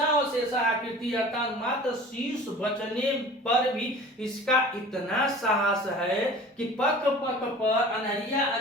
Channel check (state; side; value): normal; both; correlation 0.42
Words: और शेषा आकृति, अर्थात मात्र शीर्ष बचने पर भी इसका इतना साहस है कि पक पर, अनहरिया